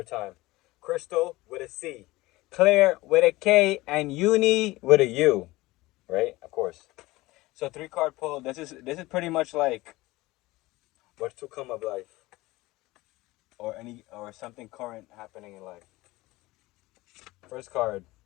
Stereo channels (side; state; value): right; quieter; 19.8 dB